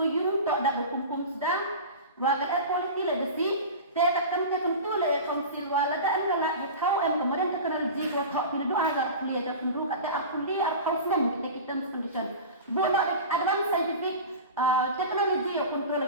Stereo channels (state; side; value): inverted; both; correlation -0.31